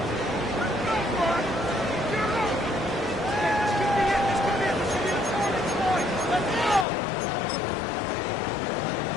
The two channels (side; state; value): right; drops out; at 6.9 s